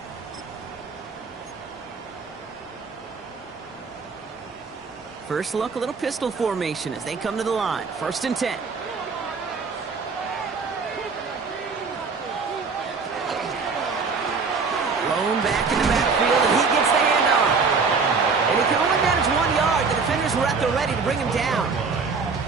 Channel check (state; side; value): quieter; left; 4.9 dB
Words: First look, a little pistol formation as they come to the line. 1st and 10. Lone back in the backfield, and he gets the handoff. players were at the ready to bring him down.